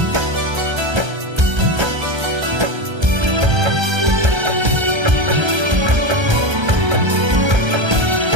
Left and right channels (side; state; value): left; late; 1.3 ms